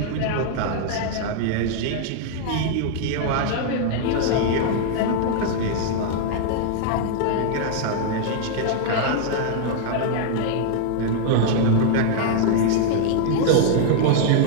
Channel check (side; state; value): both; different; correlation -0.01